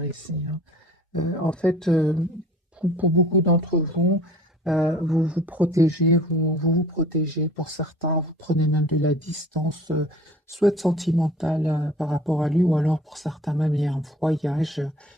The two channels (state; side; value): normal; both; correlation 0.47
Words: ici, hein. En fait, pour beaucoup d'entre vous, vous vous protégez, vous protégez. Pour certains, vous prenez même de la distance, soit sentimentale par rapport à lui, ou alors pour certains même, il y a un voyage,